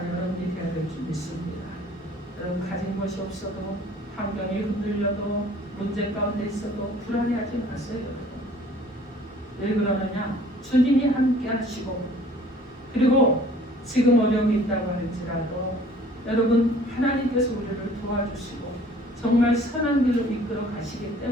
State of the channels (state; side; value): normal; both; correlation 0.53